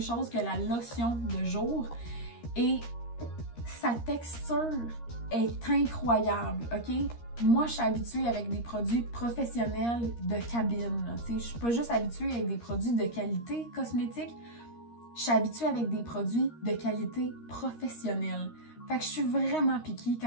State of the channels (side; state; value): right; late; 13 ms